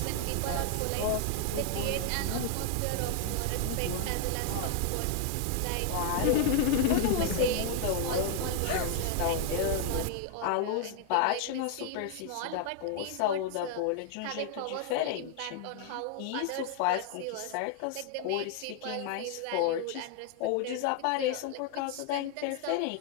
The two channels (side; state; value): both; different; correlation 0.00